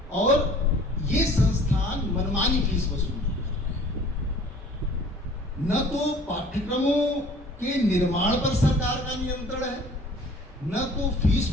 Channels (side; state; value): both; normal; correlation 0.50